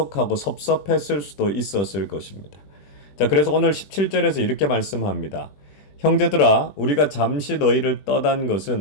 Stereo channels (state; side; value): late; right; 21 ms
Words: 섭섭했을 수도 있었을 것입니다. 자, 그래서 오늘 17절에서 이렇게 말씀합니다. 형제들아, 우리가 잠시 너희를 떠난